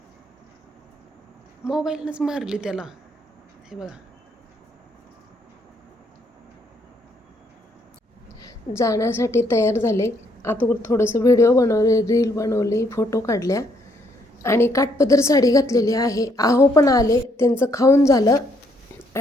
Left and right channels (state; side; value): normal; both; correlation 0.71